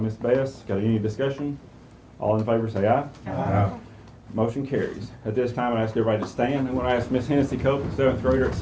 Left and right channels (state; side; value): identical; both; correlation 1.00